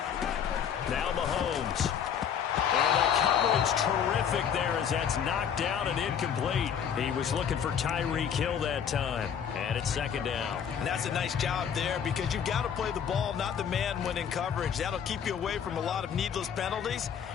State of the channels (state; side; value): quieter; right; 8.1 dB